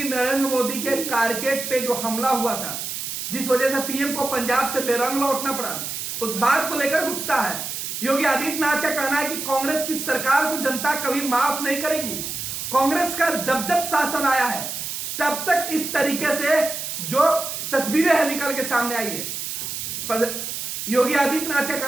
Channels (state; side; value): noise; right; hiss, 5 dB below the sound